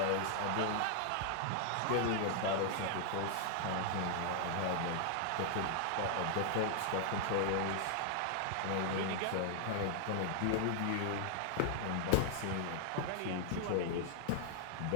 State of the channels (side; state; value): both; different; correlation 0.00